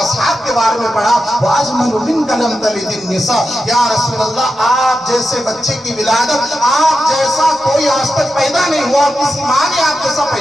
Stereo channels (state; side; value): normal; both; correlation 0.90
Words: کے بارے میں پڑھا. وَأَجْمَلُ مِنْكَ لَمْ تَلِدِ النِّسَاءُ یا رسول اللہ آپ جیسے بچے کی ولادت آپ جیسا کوئی آج تک پیدا نہیں ہوا, کسی ماں نے آپ جیسا